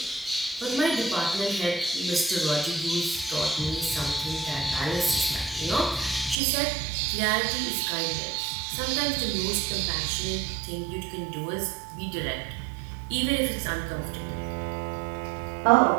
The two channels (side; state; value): left; drops out; at 6.4 s